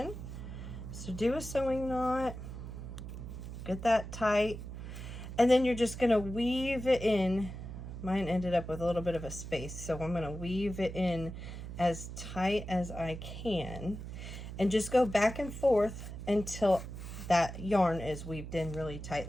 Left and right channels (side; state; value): right; noise; hum, 9 dB below the sound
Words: So do a sewing knot, get that tight, and then you're just going to weave it in. Mine ended up with a little bit of a space, so I'm going to weave it in as tight as I can and just go back and forth until that yarn is weaved in really